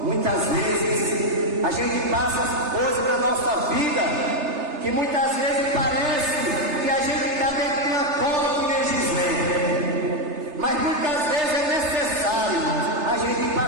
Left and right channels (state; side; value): late; left; 3.3 ms